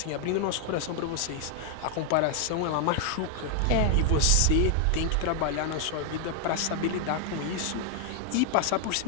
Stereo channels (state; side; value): different; both; correlation 0.00